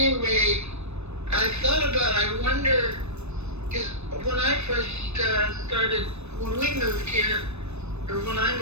I thought about, I wonder, because when I first started, when we moved here, or when I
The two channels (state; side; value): late; left; 0.81 ms